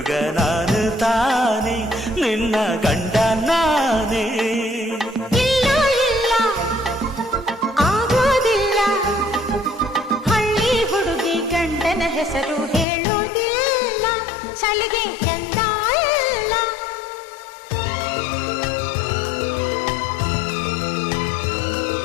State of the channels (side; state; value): right; drops out; at 12.9 s